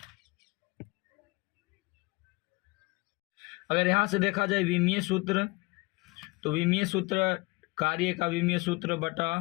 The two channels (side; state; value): right; quieter; 25.2 dB